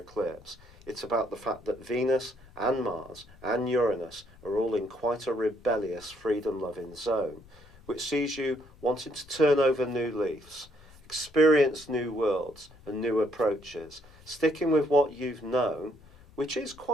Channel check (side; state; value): left; noise; rumble, 24 dB below the sound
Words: it's about the fact that Venus and Mars and Uranus are all in quite a rebellious, freedom-loving zone, which sees you wanting to turn over new leaves, experience new worlds and new approaches, sticking with what you've known, which is